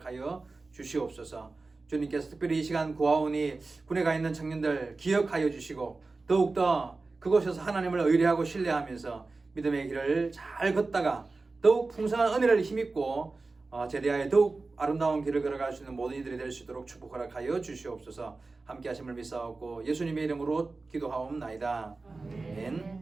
주시옵소서. 주님께서 특별히 이 시간 구하오니 군에 가 있는 청년들 기억하여 주시고 더욱더 그곳에서 하나님을 의뢰하고 신뢰하면서 믿음의 길을 잘 걷다가 더욱 풍성한 은혜를 힘입고 제대하여 더욱 아름다운 길을 걸어갈 수 있는 모든 이들이 될 수 있도록 축복 허락하여 주시옵소서. 함께 하심을 믿사옵고 예수님의 이름으로 기도하옵나이다.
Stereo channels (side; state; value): left; quieter; 3.7 dB